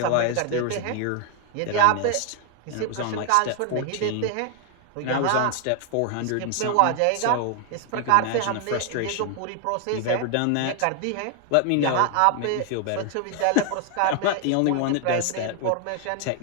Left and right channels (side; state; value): both; different; correlation 0.01